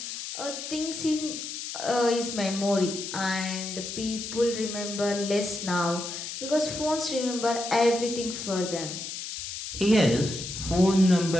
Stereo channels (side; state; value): left; noise; hiss, 7 dB below the sound